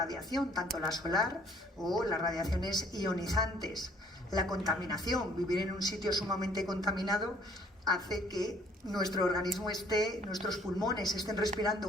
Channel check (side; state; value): both; normal; correlation 0.59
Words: tanto la solar o las radiaciones ionizantes. La contaminación, vivir en un sitio sumamente contaminado hace que nuestro organismo nuestros pulmones estén respirando